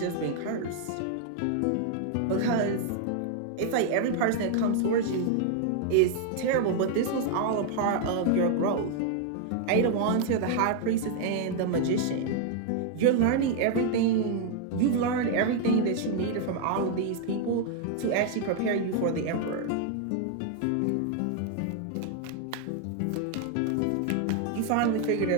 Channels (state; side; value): different; both; correlation 0.00